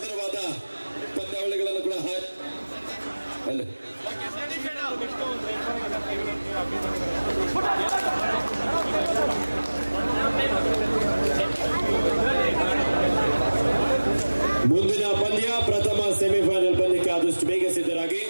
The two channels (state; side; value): inverted; both; correlation -1.00